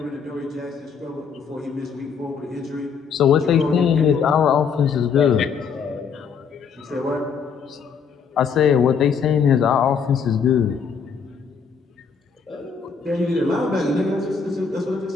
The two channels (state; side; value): quieter; right; 6.2 dB